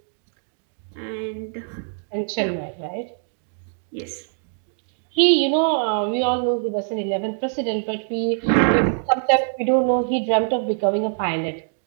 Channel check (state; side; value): silent; left; digital silence